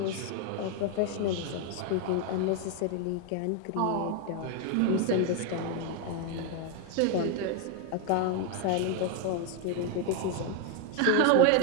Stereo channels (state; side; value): different; both; correlation 0.01